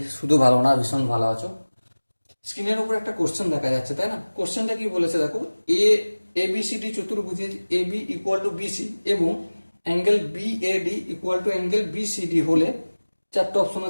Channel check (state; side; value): inverted; both; correlation -1.00